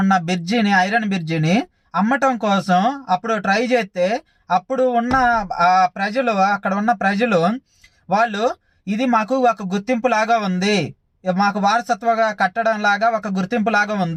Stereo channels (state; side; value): identical; both; correlation 1.00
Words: ఉన్న ఐరన్ బ్రిడ్జిని అమ్మటం కోసం అప్పుడు ట్రై చేస్తే, అప్పుడు ఉన్న ప్రజలు, అక్కడ ఉన్న ప్రజలు వాళ్ళు ఇది మాకు ఒక గుర్తింపు లాగా ఉంది, మాకు వారసత్వగా కట్టడం లాగా ఒక గుర్తింపు లాగా